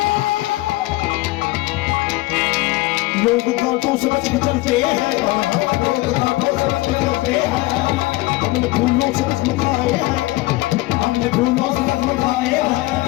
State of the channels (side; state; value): right; quieter; 20.0 dB